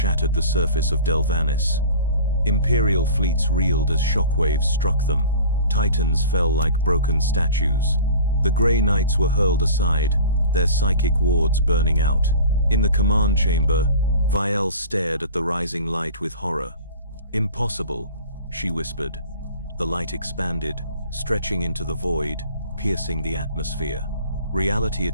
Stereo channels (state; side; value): inverted; both; correlation -0.41